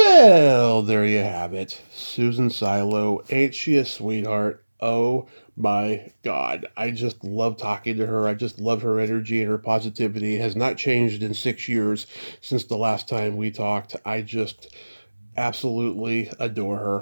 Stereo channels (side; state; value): both; inverted; correlation -1.00